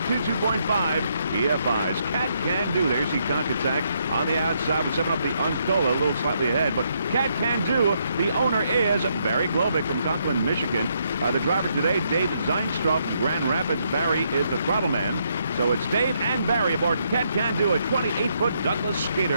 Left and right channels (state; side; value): inverted; both; correlation -0.75